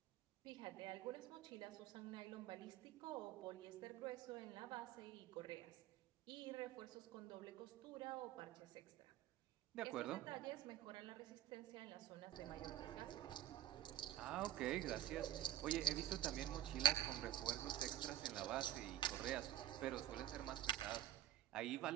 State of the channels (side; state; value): left; quieter; 12.1 dB